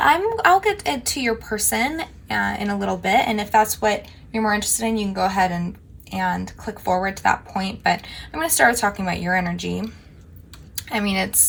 I'll get into your person in a little bit, and if that's what you're more interested in, you can go ahead and click forward to that point. But I'm going to start talking about your energy. I mean,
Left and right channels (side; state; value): both; identical; correlation 1.00